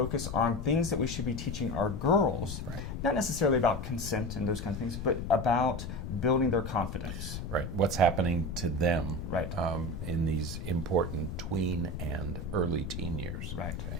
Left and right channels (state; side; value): noise; left; rumble, 6 dB below the sound